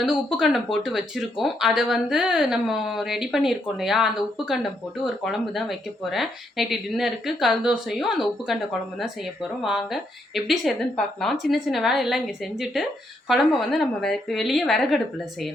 உப்பு கண்டம் போட்டு வச்சுருக்கோம். அதை வந்து நம்ம ரெடி பண்ணியிருக்கோம் இல்லையா? அந்த உப்பு கண்டம் போட்டு ஒரு குழம்பு தான் வைக்க போகிறேன். நைட்டு டின்னருக்கு கல் தோசையும் அந்த உப்பு கண்ட குழம்பு தான் செய்ய போகிறோம். வாங்க எப்படி செய்யுதுன்னு பார்க்கலாம். சின்ன சின்ன வேலையெல்லாம் இங்கே செஞ்சுட்டு குழம்பை வந்து நம்ம வெளியே விறகடுப்பில்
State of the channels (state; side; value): normal; both; correlation 0.76